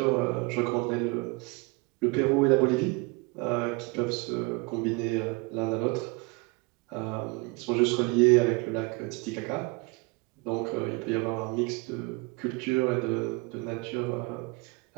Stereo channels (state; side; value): quieter; left; 27.9 dB